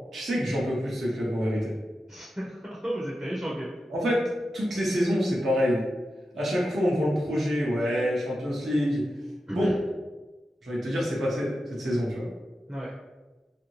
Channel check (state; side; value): normal; both; correlation 0.90